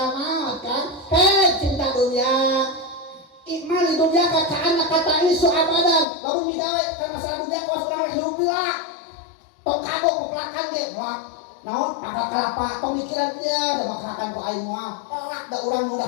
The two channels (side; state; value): right; drops out; at 6.1 s